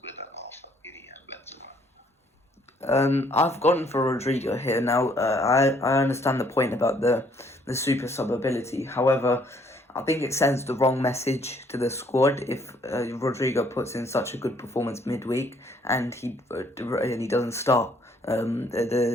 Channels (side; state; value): both; normal; correlation 0.64